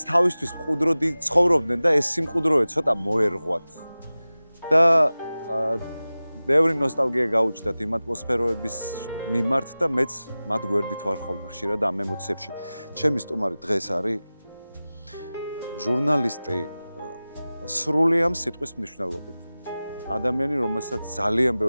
თავისთვის მყუდროდი ცხოვრობდნენ და ეს სიმყუდროე ცოტა მოერღვათ. და ბევრი ნოსტალგია გაუჩნდათ იმ ატმოსფეროების მიმართ და მეც მათ გვერდით ვარ ხოლმე ხშირად ამ ემოციებში. ჩემი სტუმარი დღეს არის ჟურნალისტი სრული ამ სიტყვის მნიშვნელობით. ადამიანი, რომელსაც ძალიან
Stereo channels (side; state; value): both; inverted; correlation -0.97